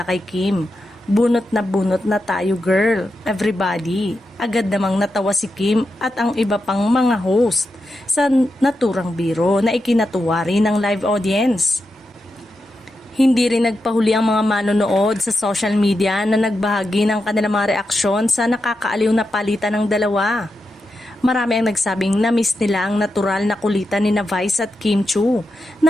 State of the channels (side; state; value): both; normal; correlation 0.88